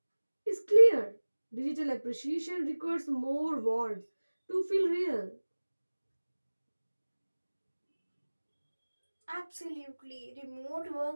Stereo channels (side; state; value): both; inverted; correlation -1.00